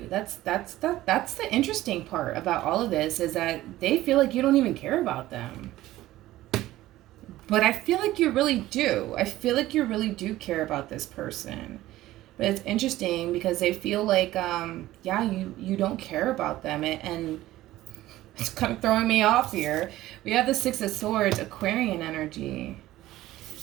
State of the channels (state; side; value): quieter; left; 15.8 dB